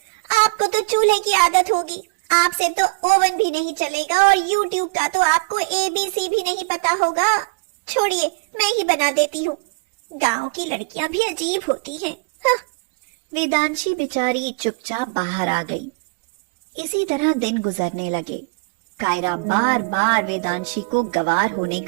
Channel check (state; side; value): quieter; left; 32.0 dB